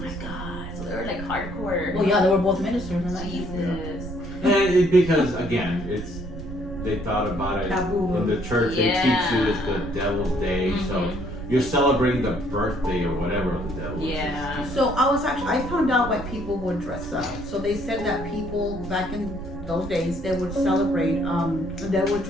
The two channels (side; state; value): right; noise; rumble, 10 dB below the sound